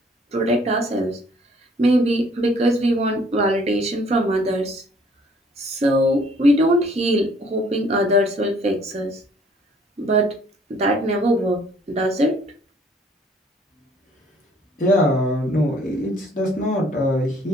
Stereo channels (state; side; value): normal; both; correlation 0.60